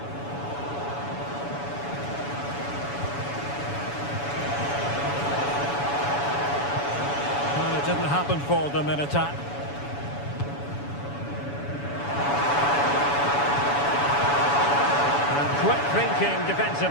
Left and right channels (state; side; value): late; right; 7.0 ms